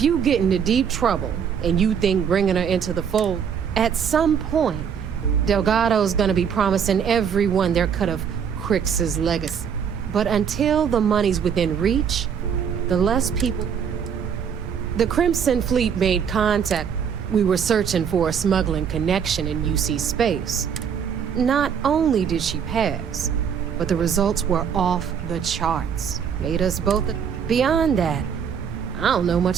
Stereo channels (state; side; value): quieter; left; 7.5 dB